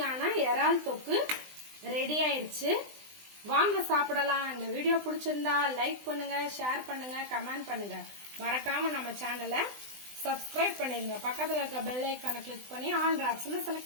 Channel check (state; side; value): late; left; 20 ms